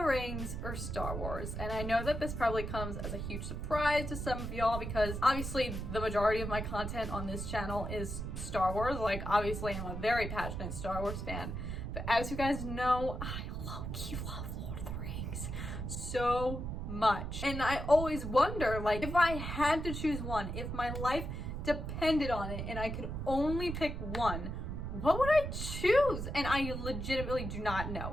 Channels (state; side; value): noise; right; rumble, 5 dB below the sound